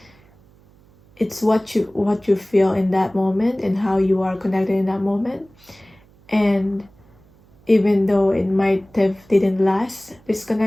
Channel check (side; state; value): right; noise; hum, 29 dB below the sound